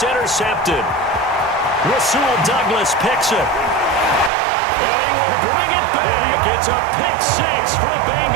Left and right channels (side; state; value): left; drops out; at 4.3 s